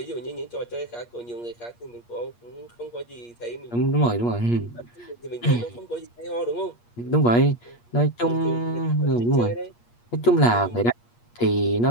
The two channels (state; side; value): late; right; 8.5 ms